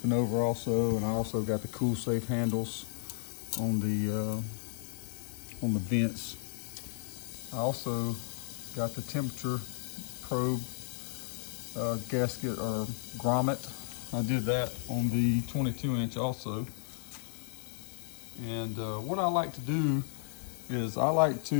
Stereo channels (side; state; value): right; silent; digital silence